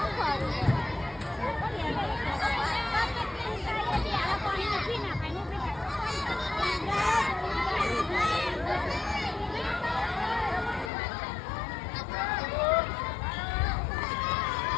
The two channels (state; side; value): drops out; right; at 10.9 s